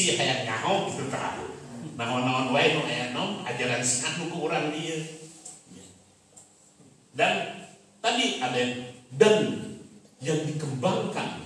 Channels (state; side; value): identical; both; correlation 1.00